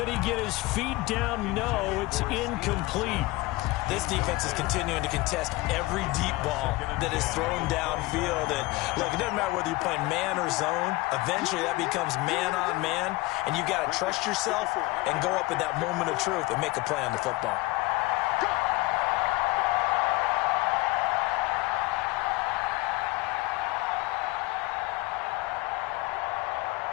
he get his feet down? No, it's incomplete. This defense is continuing to contest every deep ball that is thrown downfield. And look, it doesn't matter whether you're playing man or zone. Eventually that becomes man on man. And you got to trust yourself and go up at that moment of truth and make a play on the football.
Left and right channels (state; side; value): quieter; right; 21.4 dB